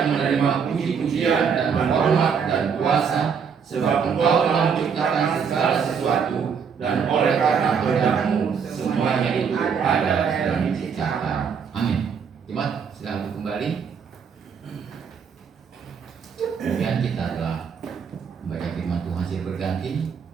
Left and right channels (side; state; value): left; quieter; 6.6 dB